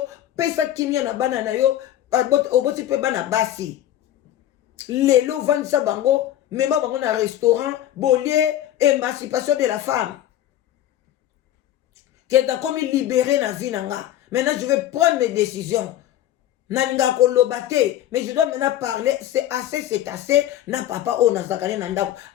pesa kimia na bana na yo, oboti pe bana basi. Lelo vandisa bango, mema bango na restaurant, bolie, émancipation de la femme. Que t'as comme libéré na vie nanga. Maintenant, je vais prendre mes décisions. Nalinga kolobate, mais je dois maintenant parler. C'est assez. Na papa o na zakane nandako.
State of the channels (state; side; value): quieter; right; 12.3 dB